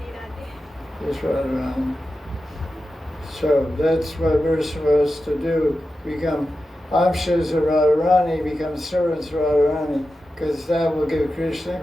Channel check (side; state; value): both; normal; correlation 0.92